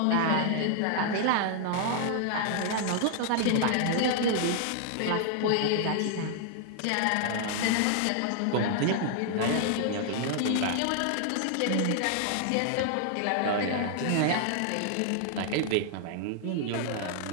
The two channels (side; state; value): both; different; correlation 0.00